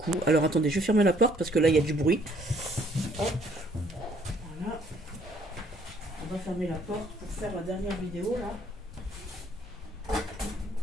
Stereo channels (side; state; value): both; normal; correlation 0.63